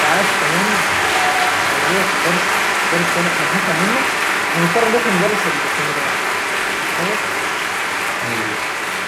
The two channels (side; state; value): both; identical; correlation 1.00